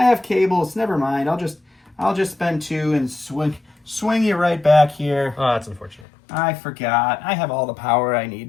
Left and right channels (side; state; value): right; drops out; at 6.1 s